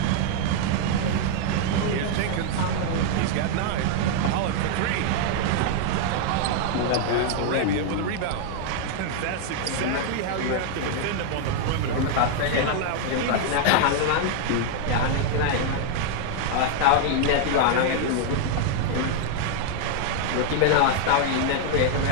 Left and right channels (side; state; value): both; different; correlation 0.00